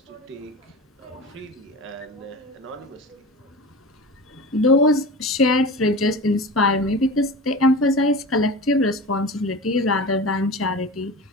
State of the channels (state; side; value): normal; both; correlation 0.31